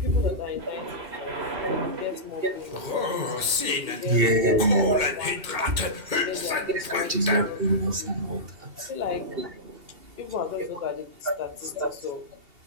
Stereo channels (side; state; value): left; late; 2.2 ms